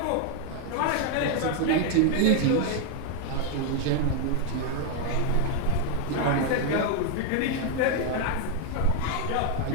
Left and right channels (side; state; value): both; different; correlation 0.01